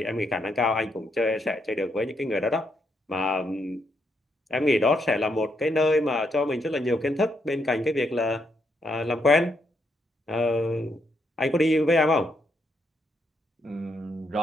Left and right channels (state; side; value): normal; both; correlation 0.77